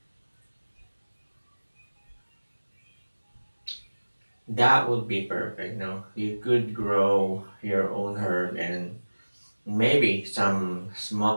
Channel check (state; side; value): inverted; both; correlation -1.00